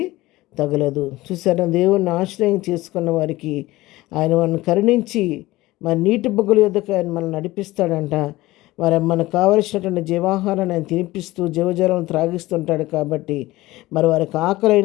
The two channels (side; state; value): right; quieter; 18.5 dB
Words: తగలదు. చూసారా, దేవుణ్ణి ఆశ్రయం చేసుకున్న వారికి ఆయన మనల్ని కరుణించి మరి నీటి బొగ్గల యొద్దకు ఆయన మనల్ని నడిపిస్తాడంట. మరి మనకు కావలసినటువంటి జీవాహారాన్ని ఆయన తినిపిస్తూ జీవజలం త్రాగిస్తుంటాడు. కాబట్టి మరి వారికి